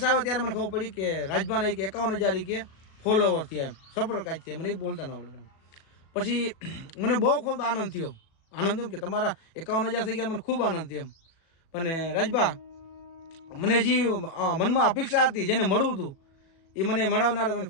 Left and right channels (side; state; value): right; late; 37 ms